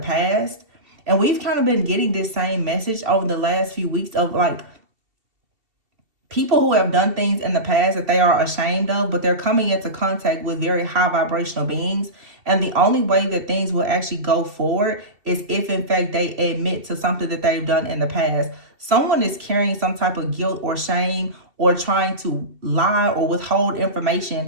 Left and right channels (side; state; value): left; late; 2.7 ms